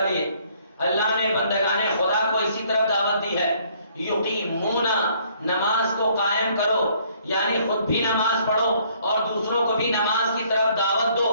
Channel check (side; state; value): both; inverted; correlation -0.63